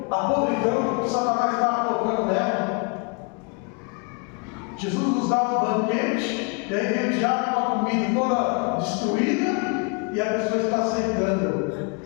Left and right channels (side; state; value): right; quieter; 34.1 dB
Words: a podridão que Satanás está colocando nela. Jesus nos dá um banquete, e aí vem o diabo com a comida toda destruída, e a pessoa está aceitando.